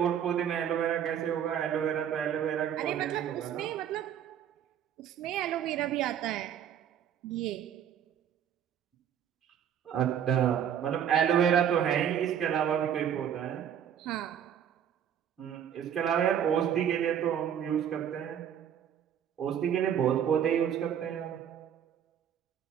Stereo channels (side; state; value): left; quieter; 9.3 dB